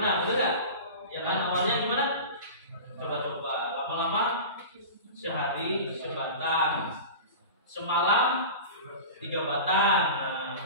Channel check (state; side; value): inverted; both; correlation -0.32